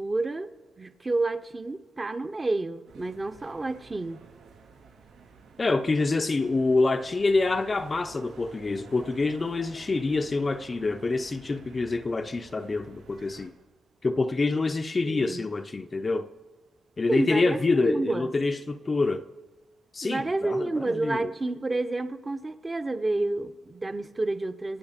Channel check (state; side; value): normal; both; correlation 0.94